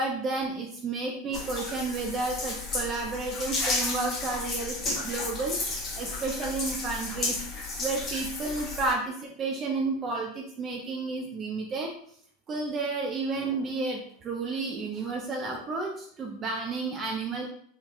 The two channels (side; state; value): both; normal; correlation 0.35